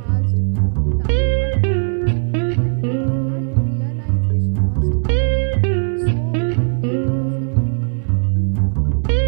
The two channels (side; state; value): left; silent; digital silence